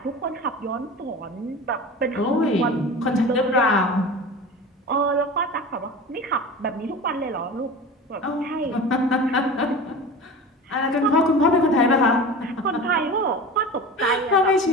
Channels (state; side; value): normal; both; correlation 0.33